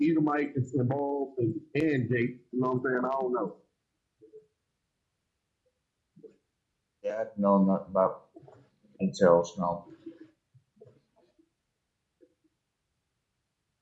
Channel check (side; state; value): both; identical; correlation 1.00